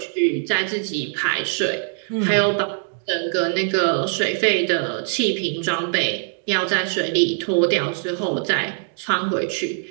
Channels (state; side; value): silent; left; 64 dB below the other